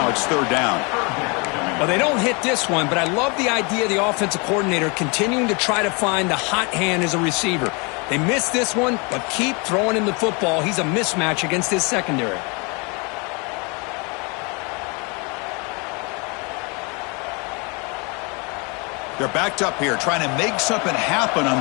it's third down. Well, they don't hit this one, but I love the idea of the offensive coordinator continuing to try to find the hot hand as a receiver. They missed this one, but keep throwing him the football. He's a mismatch against his secondary. They're backed up here, trying to make something happen on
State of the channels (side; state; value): right; quieter; 31.0 dB